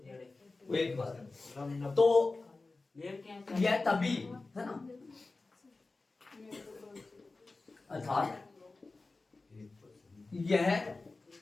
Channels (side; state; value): right; quieter; 3.5 dB